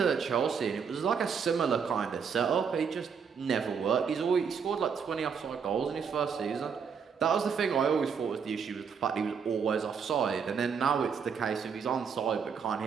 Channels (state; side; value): quieter; left; 6.5 dB